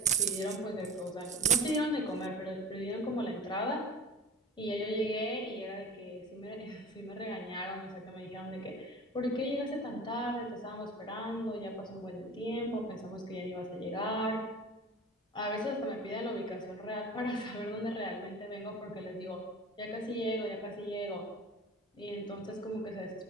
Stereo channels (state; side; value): normal; both; correlation 0.36